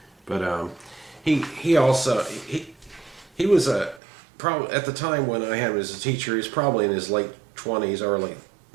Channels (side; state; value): left; drops out; at 4.0 s